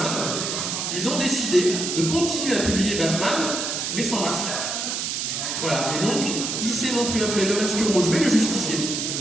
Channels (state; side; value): noise; right; hiss, 2 dB below the sound